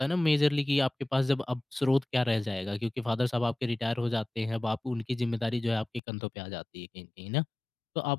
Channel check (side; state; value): right; drops out; at 6.0 s